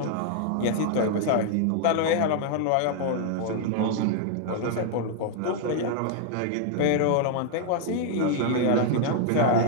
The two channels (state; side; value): different; both; correlation 0.00